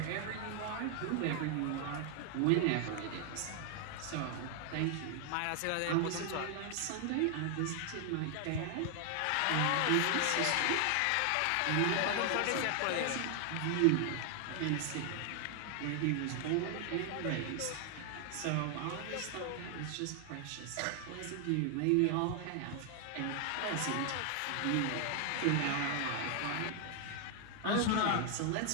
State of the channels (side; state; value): both; different; correlation 0.00